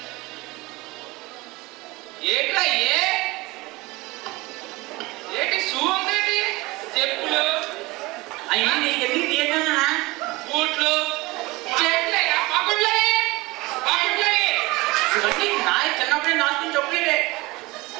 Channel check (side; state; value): left; quieter; 22.0 dB